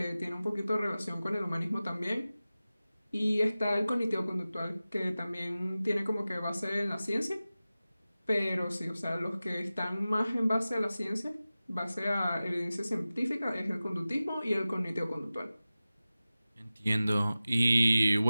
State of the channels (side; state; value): both; inverted; correlation -0.96